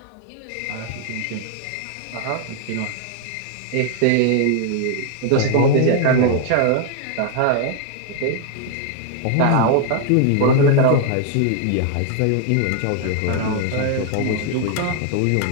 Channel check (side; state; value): both; different; correlation 0.00